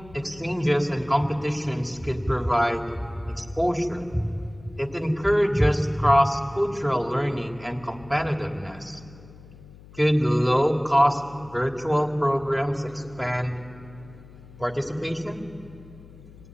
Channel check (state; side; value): noise; left; hum, 21 dB below the sound